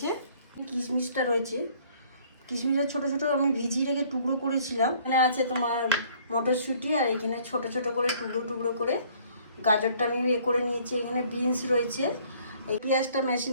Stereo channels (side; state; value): both; inverted; correlation -0.58